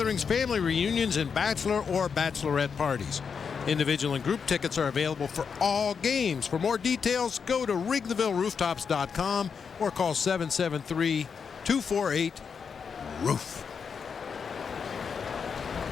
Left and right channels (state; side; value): quieter; right; 6.2 dB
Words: family reunions, and bachelor or bachelorette parties. Individual and group tickets are available for all games. For more details, go to WrigleyvilleRooftops.com or call 773-248-ROOF.